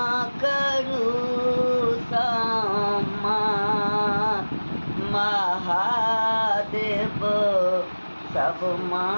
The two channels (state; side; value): inverted; both; correlation -1.00